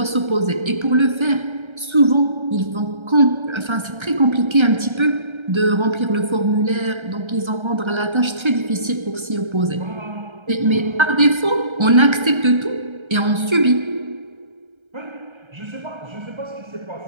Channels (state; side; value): late; left; 1.3 ms